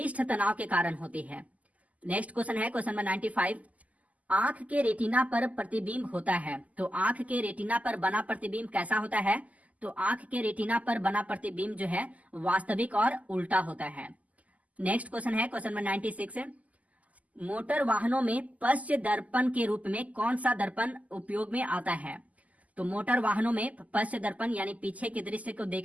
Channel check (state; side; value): late; left; 0.074 ms